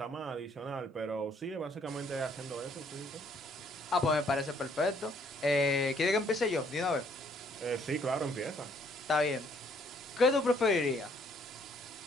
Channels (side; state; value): both; normal; correlation 0.65